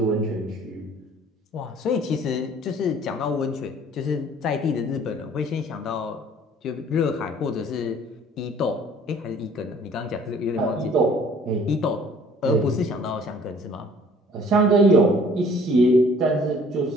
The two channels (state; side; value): normal; both; correlation 0.54